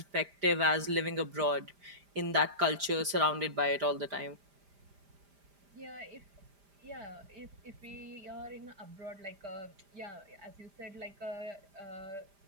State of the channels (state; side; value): late; left; 5.0 ms